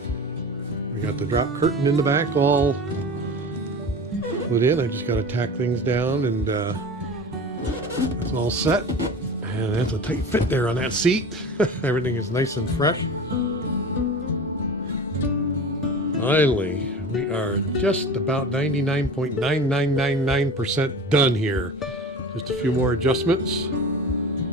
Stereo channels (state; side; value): normal; both; correlation 0.34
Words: We got the drop curtain in the back all put in. I just got to tack things down, and it's all set. And that's a tight fit there on that seat. Everything is nice and fresh. Finally, we are just about 99.9999% done here. Just a few more adjustments.